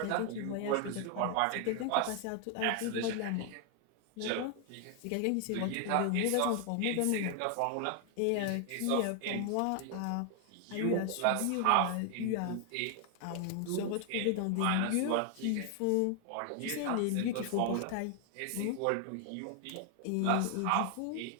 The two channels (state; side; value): different; both; correlation 0.00